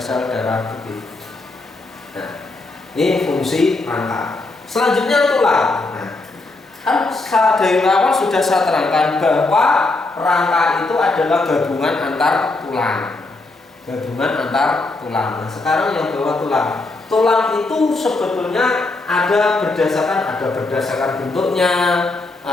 sel darah putih. Nah, ini fungsi rangka. Selanjutnya tulang. Nah, kan dari awal sudah saya terangkan bahwa rangka itu adalah gabungan antar tulang. Nah, sekarang yang bawah tulang. Tulang itu sebetulnya ada berdasarkan bentuknya,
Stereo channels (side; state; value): right; quieter; 3.2 dB